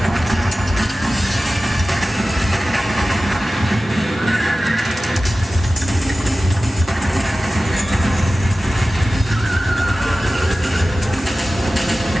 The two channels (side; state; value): both; normal; correlation 0.95